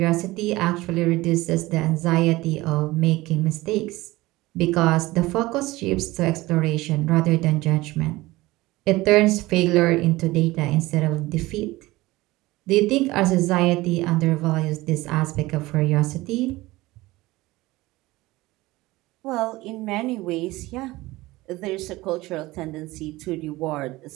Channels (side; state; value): left; quieter; 19.5 dB